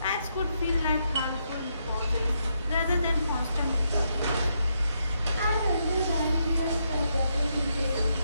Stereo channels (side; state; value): both; inverted; correlation -0.79